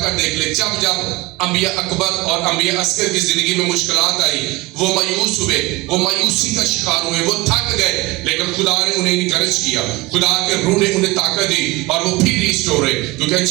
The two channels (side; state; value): left; quieter; 21.8 dB